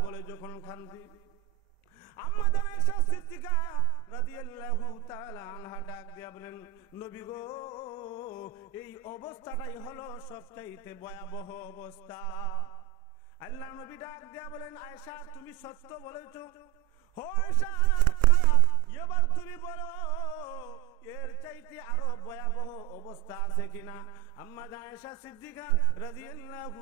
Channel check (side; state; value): left; quieter; 13.1 dB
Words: বলে যখন কাঁদে। আম্মা জান আয়েশা সিদ্দিকা রাদিয়াল্লাহু তাআলা আনহা ডাক দিয়া বলেন, নবী গো, এই অবস্থাটাই হলো সবচাইতে ভয়াবহ অবস্থা। আল্লাহ নবী ডাক দিয়া বলেন, আয়েশা তুমি সত্য বলেছো। হো আয়েশা, এবার তুমি বলো এর চাইতে আরো ভয়াবহ অবস্থা আছে কিনা? আম্মা জান আয়েশা সিদ্দিকা রাদিয়াল্লাহু